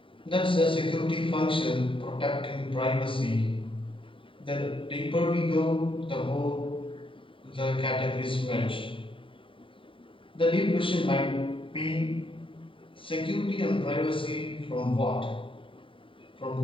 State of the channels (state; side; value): late; right; 0.25 ms